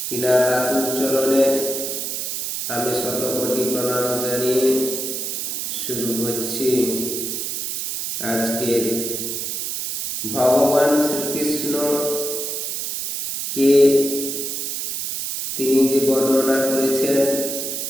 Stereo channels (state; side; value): noise; right; hiss, 3 dB below the sound